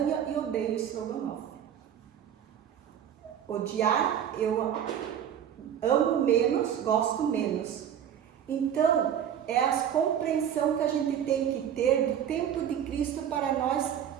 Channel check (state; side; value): quieter; left; 9.4 dB